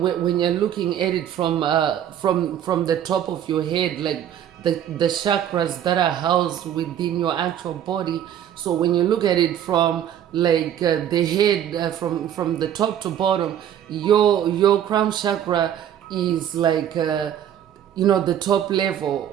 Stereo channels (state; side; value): quieter; left; 10.2 dB